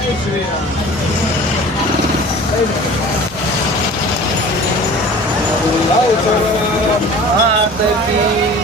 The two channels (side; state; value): both; normal; correlation 0.42